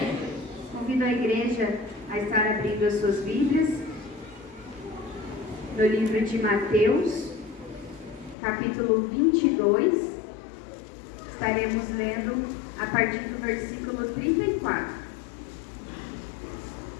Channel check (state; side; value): drops out; right; at 8.3 s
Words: Convido a igreja a estar abrindo as suas Bíblias no livro de Mateus, capítulo 22. Estaremos lendo a partir do versículo 34.